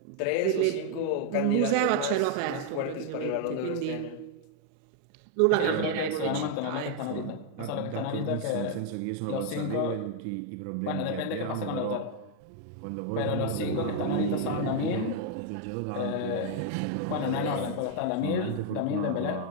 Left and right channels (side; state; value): both; different; correlation 0.00